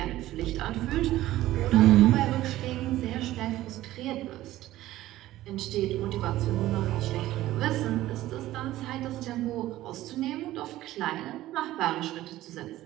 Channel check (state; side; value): quieter; left; 15.3 dB